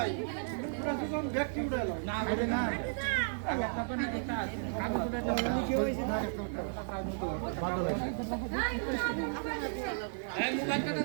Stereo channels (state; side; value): silent; left; digital silence